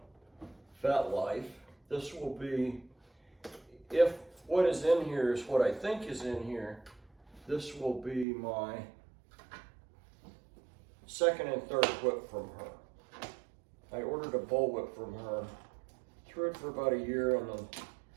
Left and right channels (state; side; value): drops out; left; at 8.2 s